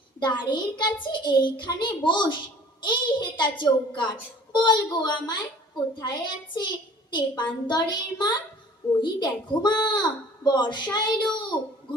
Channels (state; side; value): normal; both; correlation 0.50